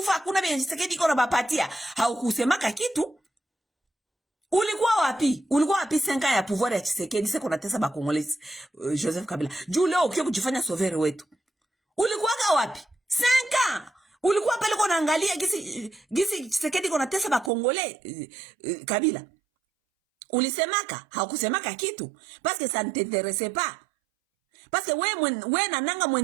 hakuna vile Tshisekedi iko na bapatia. Haukusemaka kitu. Ulikuwa wapi 5 ya pouvoir ya Tshisekedi sasa kunatesa ba Congolais? Joseph Kabila juu leo ukio kujifanya sauveur wetu, ulikuwa wapi 5? Ulikuwa pale kwa naangalia gisi Tshisekedi kunatesa ba Congolais? Kabila ulisemaka? Haukusemaka kitu parce que ça ne t'intéressait pas, parce que we na nanga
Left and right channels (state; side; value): drops out; left; at 17.5 s